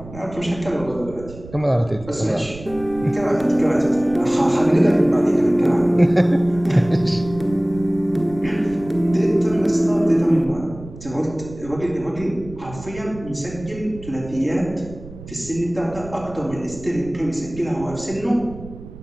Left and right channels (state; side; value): noise; right; rumble, 16 dB below the sound